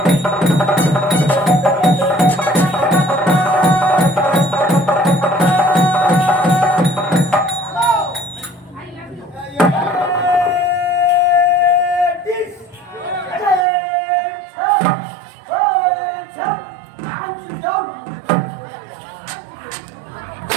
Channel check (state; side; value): drops out; left; at 13.7 s